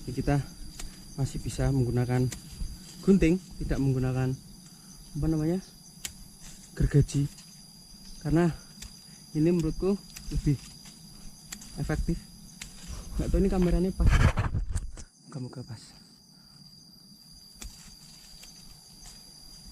Jadi kita masih bisa menggunakan gunting, tidak menggunakan apa namanya, gergaji, karena ini menurutku lebih efektif. Nggak tahu ini kameranya pas, moga-moga pas.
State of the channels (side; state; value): both; identical; correlation 1.00